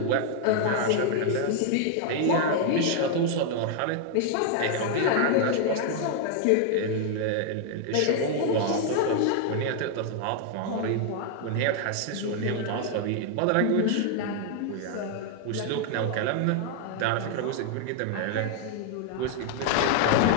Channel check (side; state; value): both; different; correlation 0.00